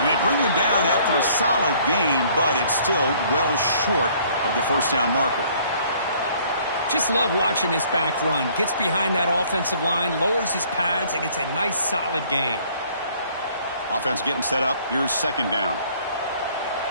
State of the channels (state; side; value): inverted; both; correlation -0.58